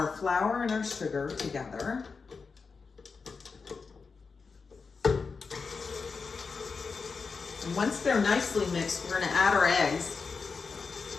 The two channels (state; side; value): quieter; right; 4.9 dB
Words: flour and our sugar together. And once they're nicely mixed, we're gonna add our eggs.